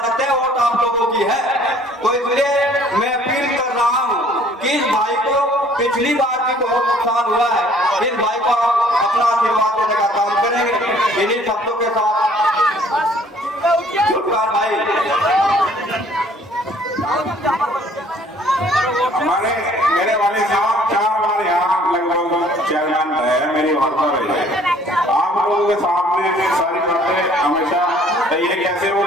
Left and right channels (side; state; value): both; normal; correlation 0.57